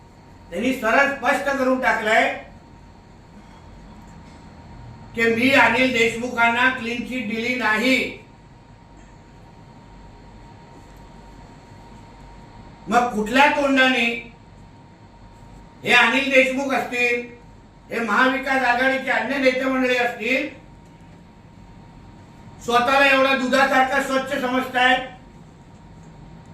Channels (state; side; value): identical; both; correlation 1.00